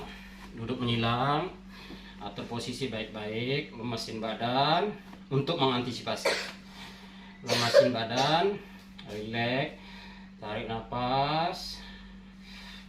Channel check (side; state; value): both; identical; correlation 1.00